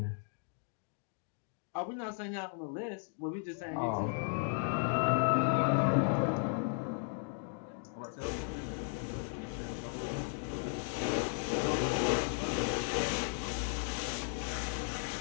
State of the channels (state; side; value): silent; right; 54 dB below the other